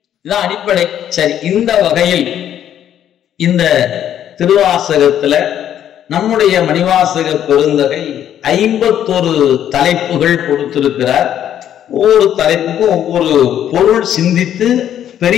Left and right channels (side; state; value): right; quieter; 10.4 dB